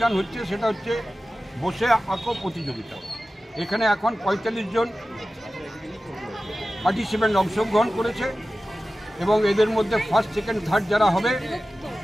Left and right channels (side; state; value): both; normal; correlation 0.95